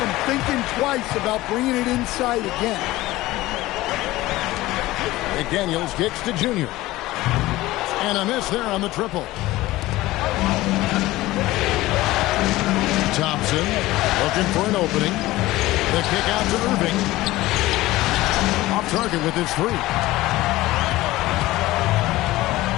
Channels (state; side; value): quieter; right; 17.8 dB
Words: thinking twice about bringing it inside again. McDaniels kicks to Junior. And a miss there on the triple. Thompson looking for an opening. The kick out to Irving. Off target with his three.